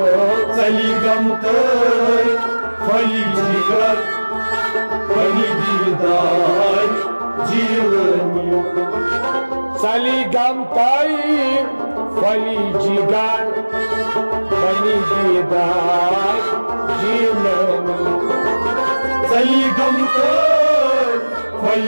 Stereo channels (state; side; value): inverted; both; correlation -1.00